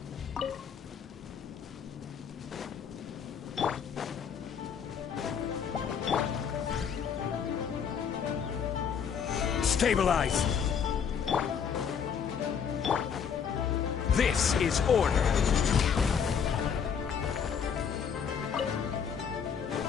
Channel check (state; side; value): quieter; right; 7.2 dB